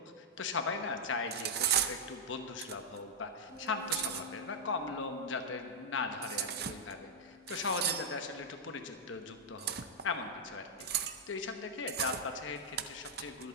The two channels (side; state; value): both; normal; correlation -0.05